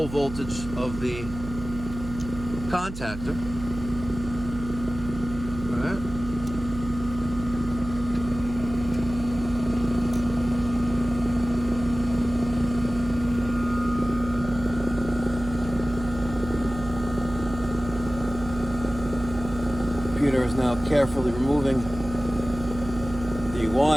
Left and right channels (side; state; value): right; noise; hum, 10 dB below the sound